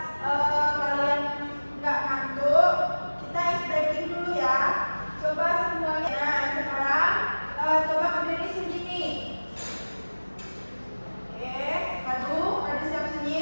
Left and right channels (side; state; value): both; inverted; correlation -1.00